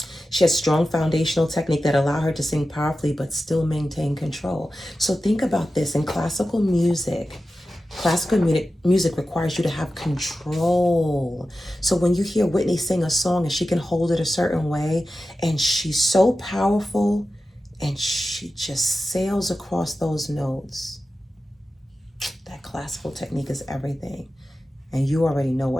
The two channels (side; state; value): both; normal; correlation 0.93